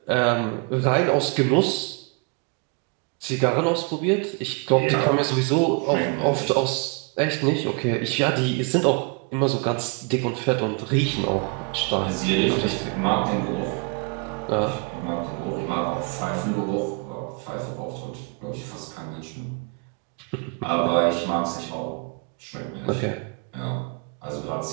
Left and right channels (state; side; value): quieter; left; 31.9 dB